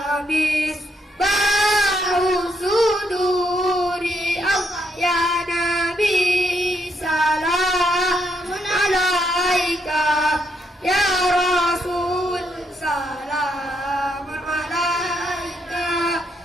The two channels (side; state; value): both; normal; correlation 0.76